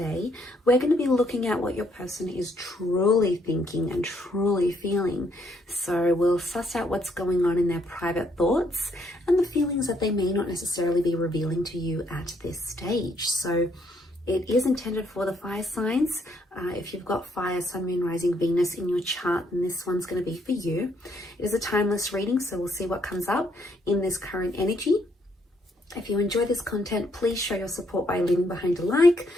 We're going to be looking at what your person is truly thinking and truly feeling. So we'll suss out what's going on in their private thoughts and the feelings that they may not necessarily be revealing to you at this stage. So it is intended for the fire signs. If you've got fire, sun, moon, rising, Venus in your chart, then this one's going to be for you. It is a timeless reading, so we'll see what comes up in this current energy. If you enjoy this content, please show your support by leaving behind a like.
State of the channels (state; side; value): normal; both; correlation 0.71